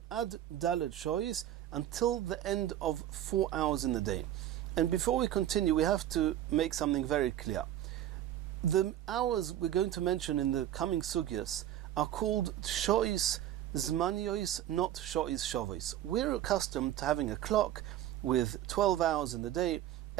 Ad Daled Shois, until the end of 4 hours in the day. And before we continue, we have to make something very clear. The hours we're going to mention in the coming sugyas are called Shois Zmaniyos, not Shois Shavos. We're accustomed to having a clock with 12 hours in the day.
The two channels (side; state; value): left; quieter; 12.2 dB